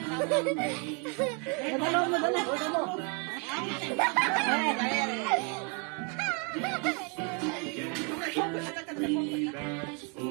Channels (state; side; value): quieter; left; 35.6 dB